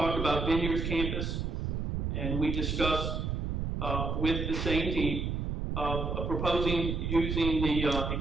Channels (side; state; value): right; noise; rumble, 1 dB below the sound